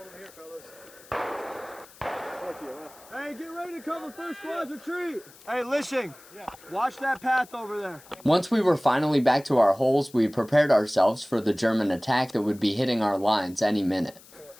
them here, fellas. Hey, get ready to cover first squad's retreat. Hey, Lishing. Yeah. Watch that path over there. Once we were finally back to our holes, we prepared ourselves for the German attack that would be hitting our lines any minute.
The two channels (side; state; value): left; noise; hiss, 23 dB below the sound